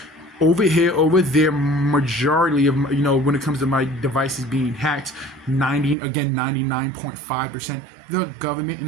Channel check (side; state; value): left; drops out; at 6.0 s